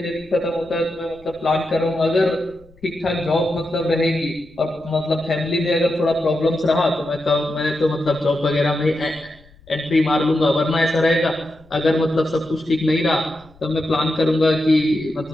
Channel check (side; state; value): left; noise; rumble, 27 dB below the sound